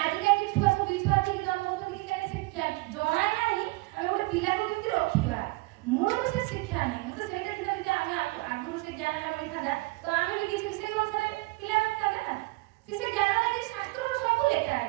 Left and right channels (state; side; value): quieter; left; 23.5 dB